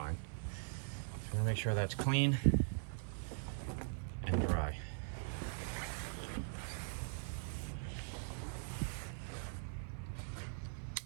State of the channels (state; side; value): silent; left; 50 dB below the other